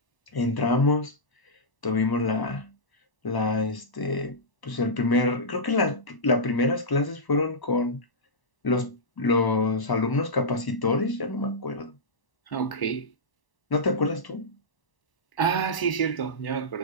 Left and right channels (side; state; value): right; late; 1.0 ms